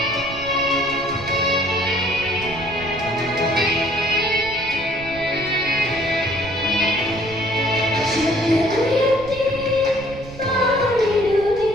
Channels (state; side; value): noise; right; rumble, 15 dB below the sound